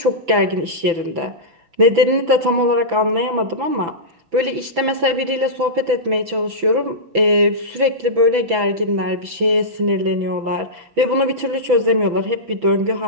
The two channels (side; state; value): left; late; 6.0 ms